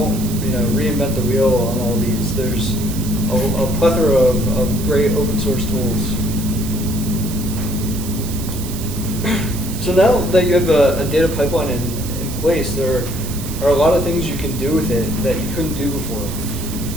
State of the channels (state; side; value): noise; right; hiss, 11 dB below the sound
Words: reinvent the wheel on all these. There's a plethora of great open source tools. So now that you have a data pipeline in place, there are a lot of things you can do with it that you couldn't do before.